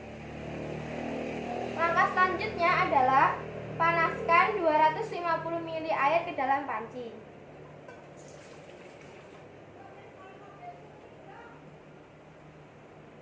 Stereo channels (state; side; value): identical; both; correlation 1.00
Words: Langkah selanjutnya adalah panaskan 250 ml air ke dalam panci.